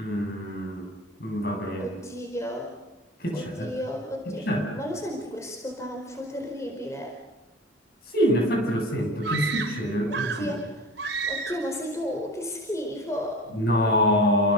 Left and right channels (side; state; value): both; normal; correlation 0.36